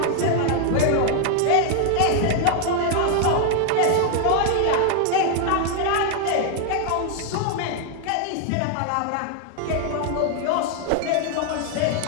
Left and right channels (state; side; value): different; both; correlation 0.00